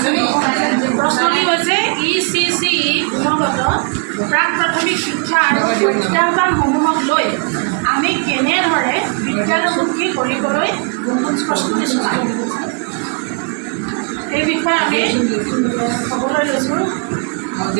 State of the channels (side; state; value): left; quieter; 37.0 dB